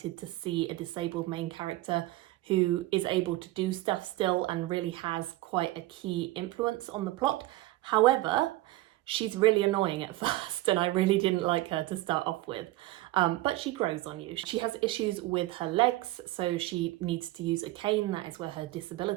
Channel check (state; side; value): quieter; left; 17.7 dB